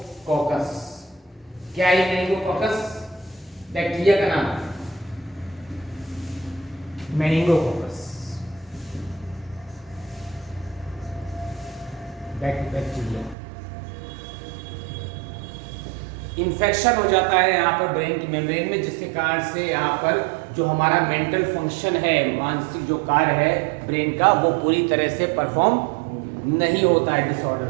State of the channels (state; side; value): drops out; left; at 13.4 s